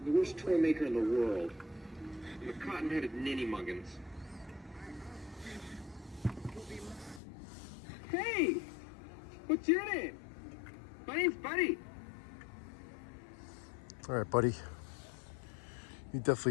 The worst toy maker in the world. The cotton-headed ninny muggins. Hey! What's your name? My name's Buddy. All right, buddy. You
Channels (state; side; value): drops out; right; at 7.2 s